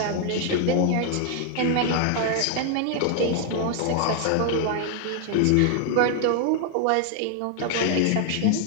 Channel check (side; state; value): both; different; correlation 0.00